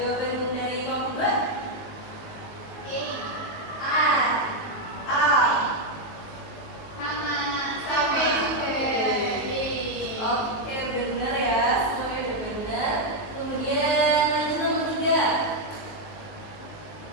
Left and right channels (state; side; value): late; right; 19 ms